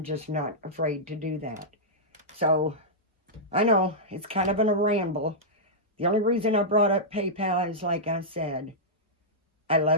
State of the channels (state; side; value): normal; both; correlation -0.11